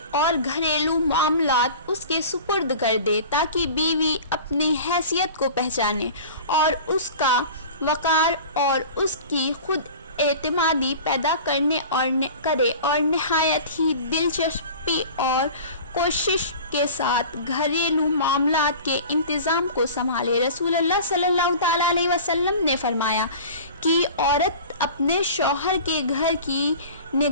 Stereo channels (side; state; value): both; inverted; correlation -0.39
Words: اور گھریلو معاملات اس کے سپرد کر دے، تاکہ بیوی اپنی حیثیت کو پہچانے اور اس کا وقار اور اس کی خود اعتمادی پیدا کرے اور نہایت ہی دلچسپی اور کوشش کے ساتھ گھریلو معاملات کے انتظام کو سنبھالے۔ رسول اللہ صلی اللہ تعالیٰ علیہ وسلم نے فرمایا کہ عورت اپنے شوہر کے گھر کی